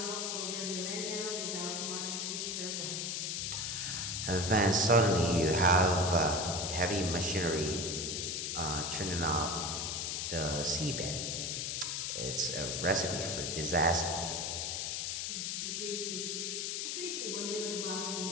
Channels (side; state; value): left; noise; hiss, 1 dB below the sound